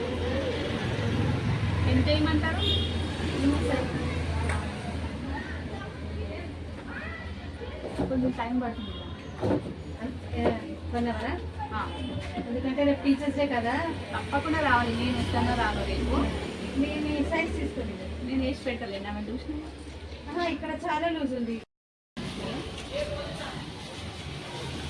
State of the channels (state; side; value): identical; both; correlation 1.00